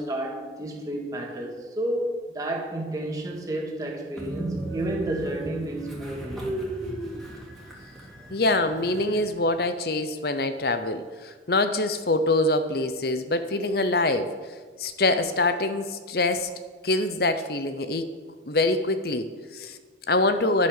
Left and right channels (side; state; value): both; normal; correlation 0.13